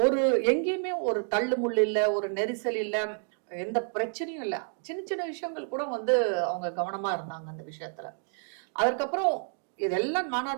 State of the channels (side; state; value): left; silent; 58 dB below the other